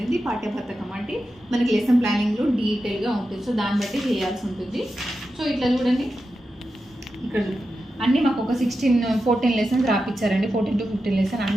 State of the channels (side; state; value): both; normal; correlation 0.90